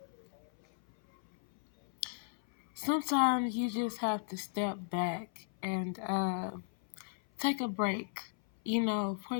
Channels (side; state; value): right; silent; 54 dB below the other